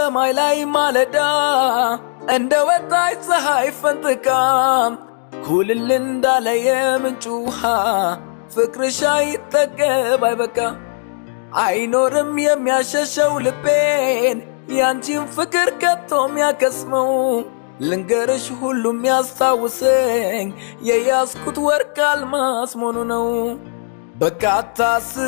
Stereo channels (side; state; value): right; silent; digital silence